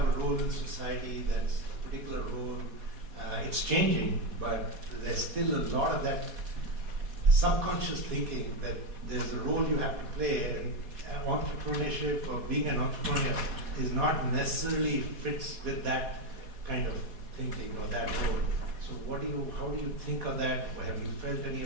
a role in society, that's a particular role. It's changing, but there's still a lot of that subconscious thinking that there's a role you have to play, and entrepreneurship or being an entrepreneur is not necessarily fits with that kind of thinking or that role. So how do you think of that? Have you felt any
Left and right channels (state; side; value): late; left; 4.1 ms